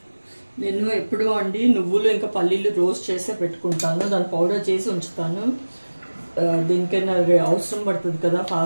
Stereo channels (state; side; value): inverted; both; correlation -1.00